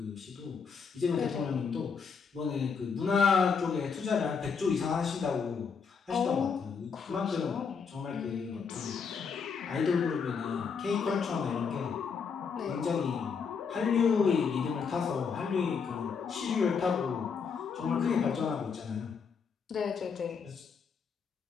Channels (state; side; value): quieter; right; 5.9 dB